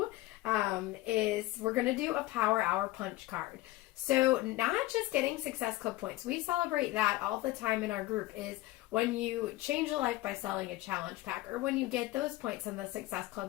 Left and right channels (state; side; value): quieter; right; 17.9 dB